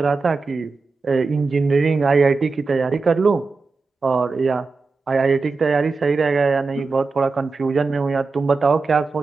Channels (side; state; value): left; quieter; 4.1 dB